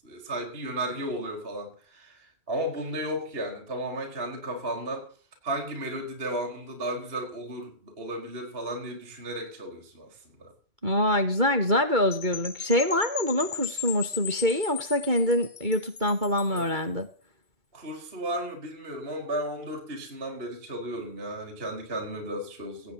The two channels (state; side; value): late; left; 2.3 ms